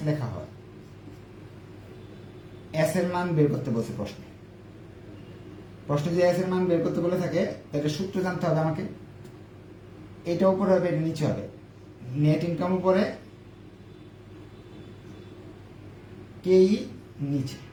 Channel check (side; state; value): both; identical; correlation 1.00